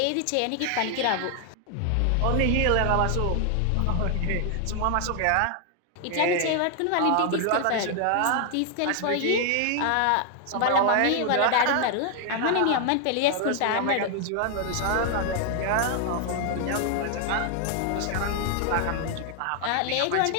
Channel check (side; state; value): both; different; correlation 0.00